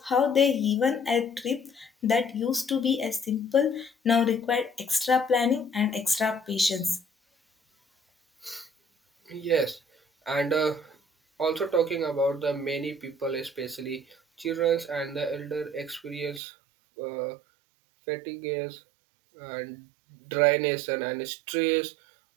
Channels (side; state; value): left; drops out; at 16.4 s